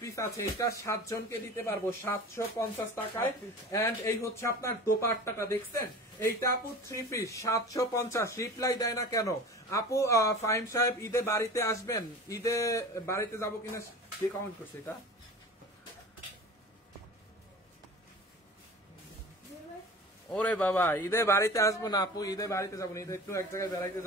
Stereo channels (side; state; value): both; normal; correlation 0.37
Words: আছে। এটা 7 জনকে দিতে পারবো 750 টাকায়। এন্ড এই হচ্ছে আপনার দোপাট্টাটা দেখছেন, এইটা আপু 3 পিস 750। রিপ্লাই দেয় না কেন আপু? ফাহিম সাহেব ঈদে বাড়িতে আসবেন? ঈদে বাড়িতে যাবো কিনা কে কমেন্ট করছে এটা? ওরে বাবা, ঈদে বাড়িতে আসবো না আপু, ঈদে বাড়িতে যাবো না, ঈদে একটু এক জায়গায় বেড়াইতে